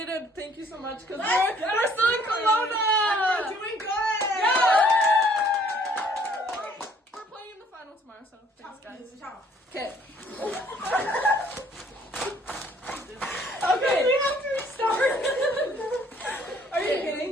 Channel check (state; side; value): normal; both; correlation 0.60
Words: thank you so much, because we're still in Kelowna. We're doing good. Yeah. We're playing in the final tomorrow, so thanks, guys. Okay. Okay. We have to restart. Are you kidding?